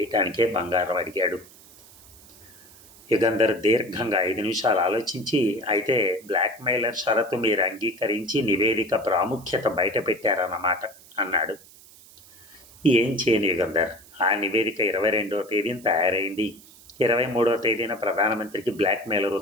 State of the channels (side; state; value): right; noise; hiss, 23 dB below the sound